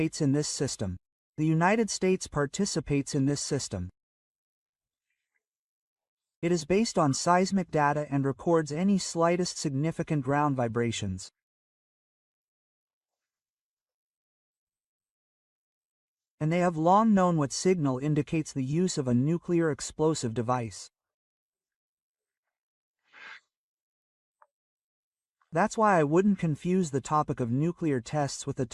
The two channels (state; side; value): identical; both; correlation 1.00